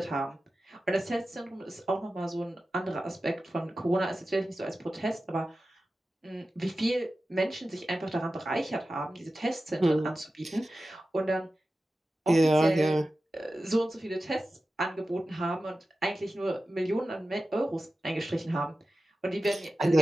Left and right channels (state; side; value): normal; both; correlation 0.94